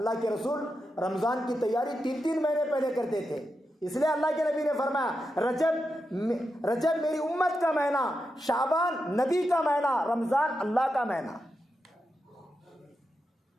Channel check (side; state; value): both; normal; correlation 0.87